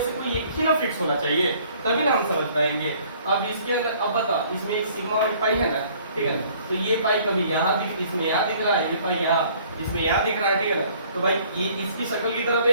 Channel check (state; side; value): inverted; both; correlation -0.57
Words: कोई एक ही ना फिक्स होना चाहिए, तभी ना हम समझ पाएंगे। अब इसके अंदर अब बताओ, इसमें एक सिग्मा और एक पाई है ना, ठीक है ना, तो ये पाई कभी यहाँ दिख, इसमें यहाँ दिख रहा है, ये पाई यहाँ, इसमें यहाँ दिख रहा है, ठीक है ना। तो भाई ये इसकी शक्ल की तरफ